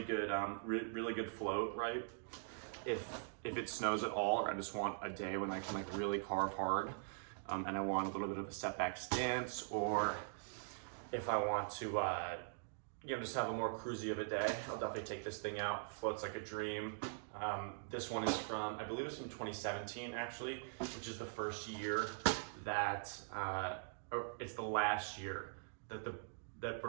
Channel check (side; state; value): left; silent; digital silence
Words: good, really good float, right? If it snows at all, or I just want a day when I can like really carve hard, and I want a little bit of a setback stance, or if I want to, just have a more cruisy of a day, I'll definitely take this thing out. Floats like a dream. This one is from, I believe it's from 2017 actually, which is the first year that, or it's the last year that